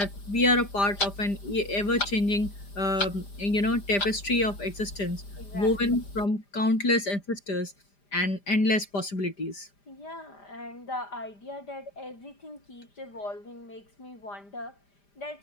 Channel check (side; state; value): right; late; 5.0 ms